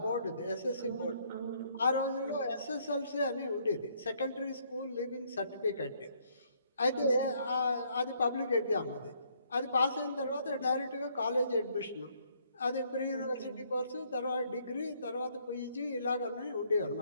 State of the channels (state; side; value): inverted; both; correlation -0.67